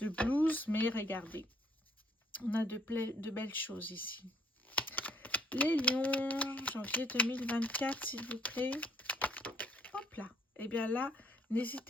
mais regardez. On a de belles choses ici. Les lions, janvier 2024, s'il vous plaît. Hop là. Et bien là,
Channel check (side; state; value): both; normal; correlation 0.65